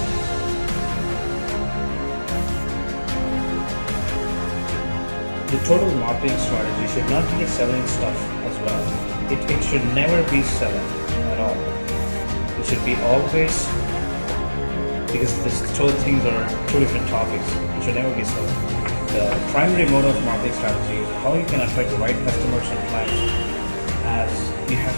The total marketing strategy should not be selling stuff as well. It should never be selling at all. It should be always, because these two things are 2 different topics. It should never be selling. The primary mode of marketing strategy is how you can attract the right customers and clients, as you have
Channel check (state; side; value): inverted; both; correlation -1.00